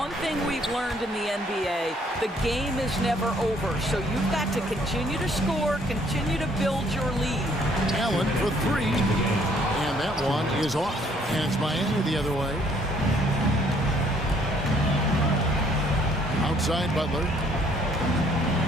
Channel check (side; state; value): both; normal; correlation 0.63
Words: thing we've learned in the NBA, the game is never over. So you've got to continue to score, continue to build your lead. Allen for three. And that one is off. And it's Miami the other way. Outside Butler.